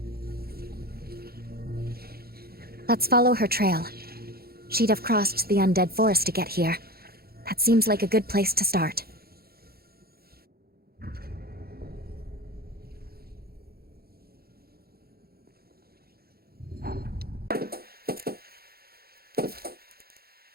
Let's follow her trail. She'd have crossed the undead forest to get here. That seems like a good place to start.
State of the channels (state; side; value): late; left; 0.45 ms